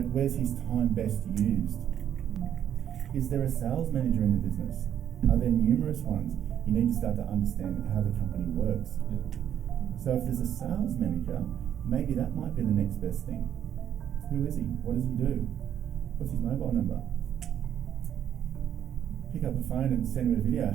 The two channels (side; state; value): left; quieter; 9.8 dB